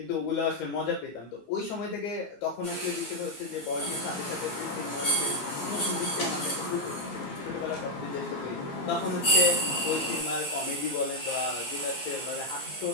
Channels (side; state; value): right; late; 15 ms